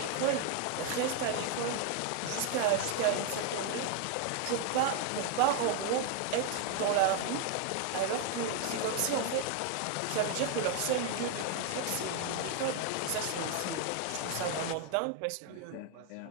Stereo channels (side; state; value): both; different; correlation 0.01